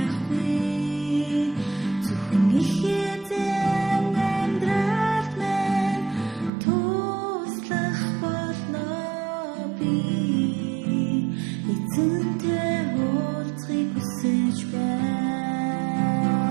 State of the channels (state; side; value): drops out; left; at 6.5 s